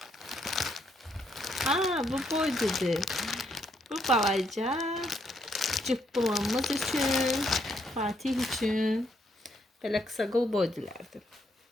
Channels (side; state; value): both; normal; correlation 0.74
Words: Bu boydudur. Bu balaca cıppılamız üçün, Fatih üçün belə qısa qol boydulardır.